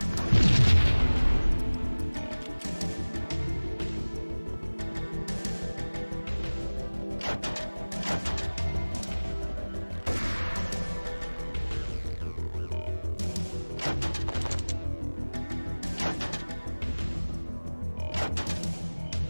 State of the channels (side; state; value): both; inverted; correlation -1.00